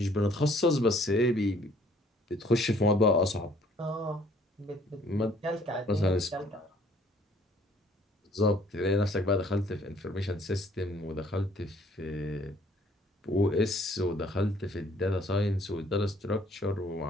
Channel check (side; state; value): both; normal; correlation 0.60